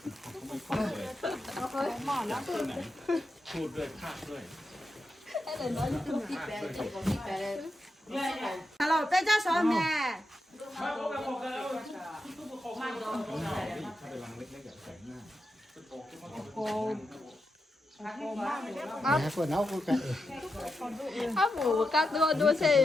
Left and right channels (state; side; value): normal; both; correlation 0.87